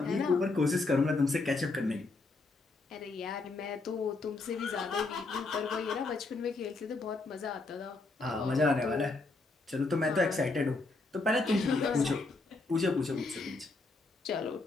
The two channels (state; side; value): quieter; right; 3.5 dB